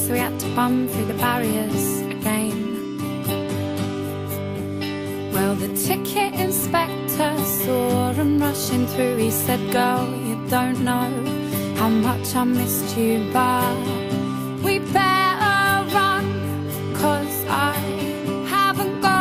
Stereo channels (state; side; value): identical; both; correlation 1.00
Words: he had to bum through the barriers again. Well, the ticket inspector saw him rushing through. He said, "Girl, you don't know how much I missed you, but we better run, 'cause I haven't